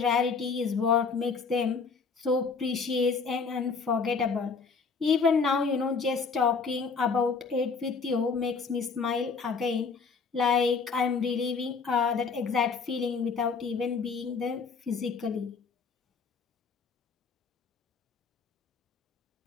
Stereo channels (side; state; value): right; quieter; 5.1 dB